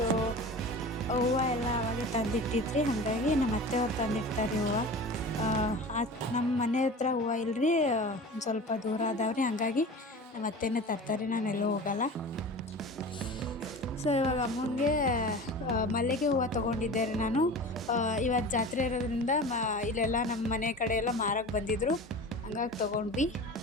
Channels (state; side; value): normal; both; correlation 0.35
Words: ಹೂವು ಎಲ್ಲ ಅವಾಗೆ ತಂದಿಟ್ಟಿದ್ರಿ, ಹಾಗಾಗಿ ನಮ್ಮ ಅತ್ತೆಯವ್ರು ತಂದಿಡ್ತಾರೆ ಹೂವು. ನಮ್ಮ ಮನೆ ಹತ್ರ ಹೂವು ಇಲ್ಲರಿ, ಒಂದು ಸ್ವಲ್ಪ ದೂರ ಅದಾವ್ರಿ, ಹಾಗಾಗಿ ನಮ್ಮ ಅತ್ತೆನೇ ತರ್ತಾರೆ, ನಾನೆಲ್ಲೂ ಹೋಗಲ್ಲ. ಸೊ ಇವಾಗ ಅಮ್ಮಂಗೆ ಮಲ್ಲಿಗೆ ಹೂವು ತೊಗೊಂಡಿದ್ದೆ ರೀ ನಾನು. ಇವತ್ತು ಜಾತ್ರೆ ಇರೋದ್ರಿಂದ ಇಲ್ಲೆಲ್ಲ ನಮ್ಮ ಮನೆ ಕಡೆ ಎಲ್ಲ ಮಾರಕ್ಕೆ ಬಂದಿದ್ದರು, ಹಂಗಾಗಿ ತೊಗೊಂಡ್ವಿ.